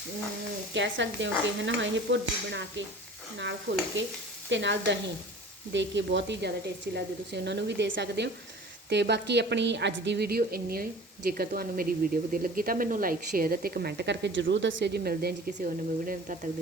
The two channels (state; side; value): normal; both; correlation 0.42